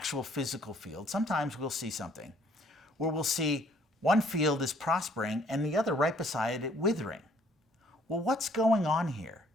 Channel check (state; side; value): normal; both; correlation 0.61